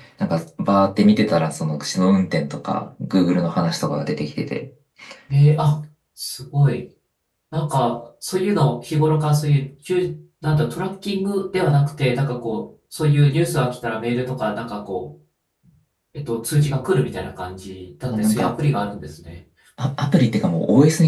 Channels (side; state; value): both; identical; correlation 1.00